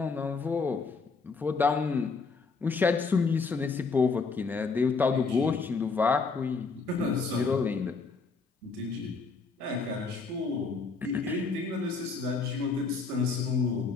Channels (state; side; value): quieter; right; 4.6 dB